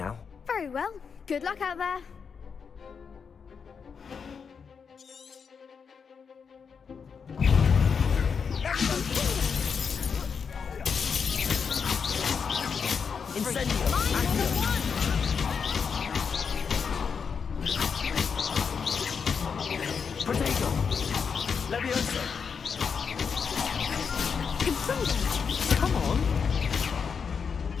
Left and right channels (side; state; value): right; quieter; 6.1 dB